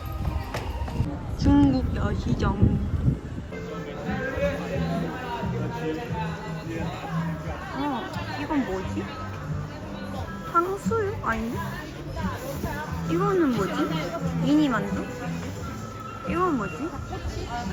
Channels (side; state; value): both; identical; correlation 1.00